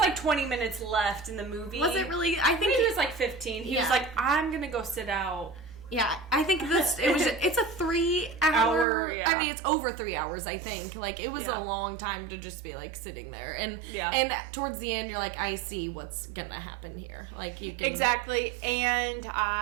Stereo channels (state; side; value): drops out; left; at 8.8 s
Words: 20 minutes left in the movie. Was it really? I think it was like 15. He was like, I'm going to go sit out. Yeah, I think it's a 3 hour. Yeah. I mean, it's over 3 hours, I think. Like, it was Yeah. a long time to just be, like, sitting there. And Yeah. and towards the end, you're like, I see what's gonna happen here. Like, you can... Exactly. And